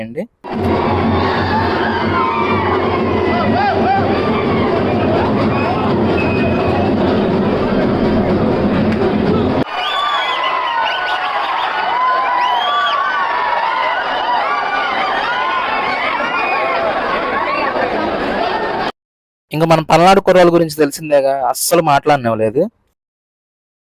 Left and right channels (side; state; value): both; identical; correlation 1.00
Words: ఇంక మన పల్నాడు కుర్రాళ్ళ గురించి తెలిసిందేగా, అస్సలు మాట్లాడనివ్వలేదు.